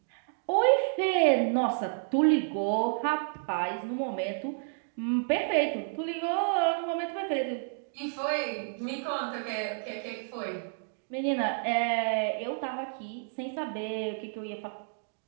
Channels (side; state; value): left; silent; digital silence